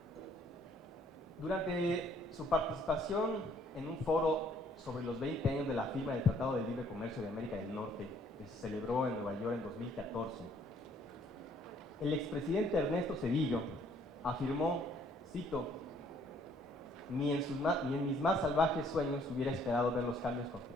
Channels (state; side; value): normal; both; correlation 0.63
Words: Durante su participación en un foro sobre los 20 años de la firma del Tratado de Libre Comercio de América del Norte, que se celebró en Nueva York en 2014, el expresidente Ernesto Zedillo afirmó, cito, ni en mis más salvajes sueños hubiera esperado ver los cambios